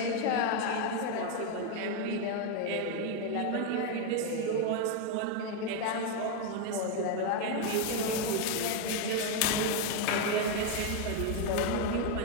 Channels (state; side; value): different; both; correlation 0.02